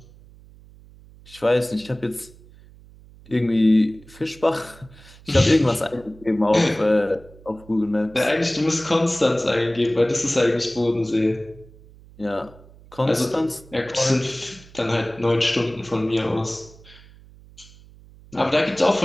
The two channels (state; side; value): noise; right; hum, 23 dB below the sound